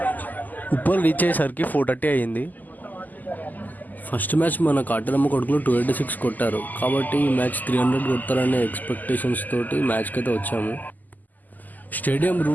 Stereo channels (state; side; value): late; right; 0.083 ms